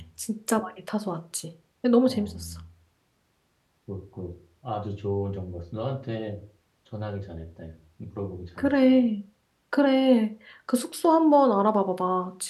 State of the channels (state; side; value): identical; both; correlation 1.00